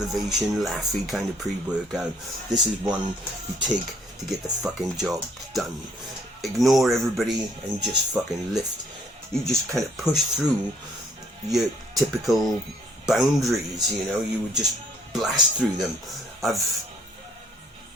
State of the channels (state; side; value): normal; both; correlation 0.63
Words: laughy kind of pre-workout. This is one you take to get the fucking job done. Ignore everybody and just fucking lift. You just kind of push through your typical boundaries, you know, you would just blast through them. I've